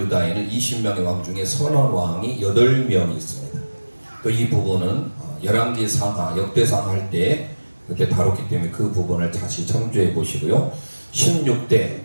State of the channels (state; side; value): inverted; both; correlation -1.00